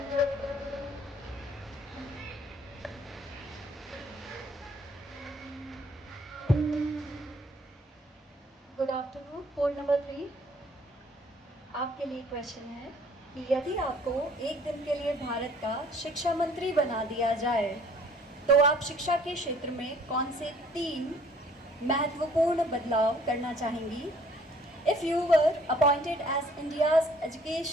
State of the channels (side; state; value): both; normal; correlation 0.58